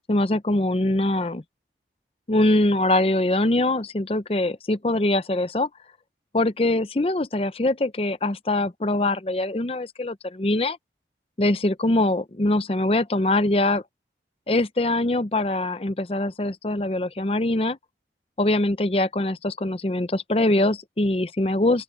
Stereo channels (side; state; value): both; normal; correlation 0.53